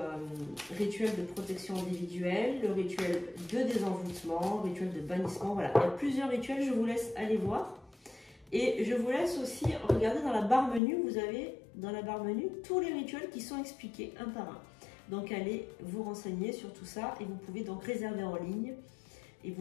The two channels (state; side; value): drops out; right; at 10.8 s